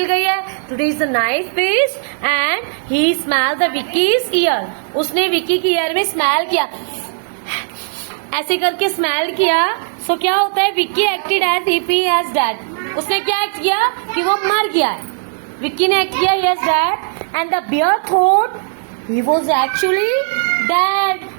गई है, today is the nice feast. And he smell the Vicky's ear, उसने विक्की की ईयर में स्मेल किया, ऐसे करके स्मेल किया। सो क्या होता है, Vicky acted as if he has dead, उसने क्या एक्ट किया कि वो मर गया है। विक्की ने एक्ट किया he has dead and the bear thought he was actually dead.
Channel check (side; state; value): left; silent; digital silence